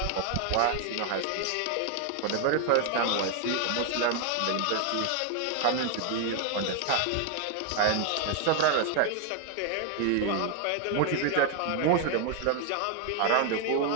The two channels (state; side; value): different; both; correlation 0.01